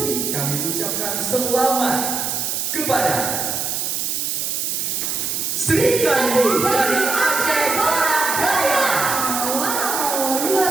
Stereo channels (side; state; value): right; noise; hiss, 1 dB below the sound